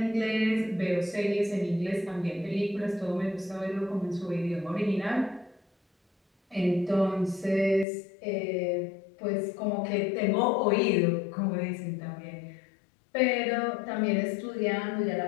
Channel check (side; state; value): right; drops out; at 7.9 s